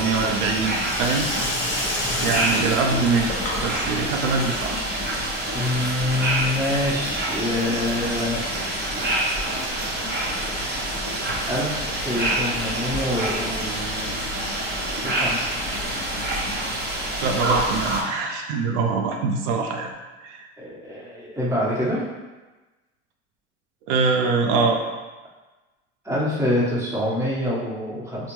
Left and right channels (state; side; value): normal; both; correlation 0.20